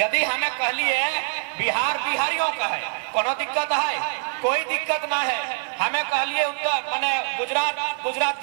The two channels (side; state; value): left; silent; digital silence